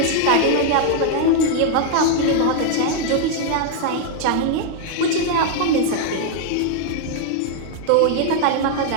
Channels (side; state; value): both; different; correlation 0.00